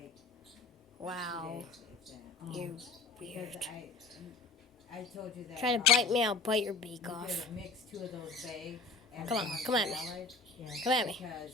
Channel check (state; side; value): quieter; right; 3.7 dB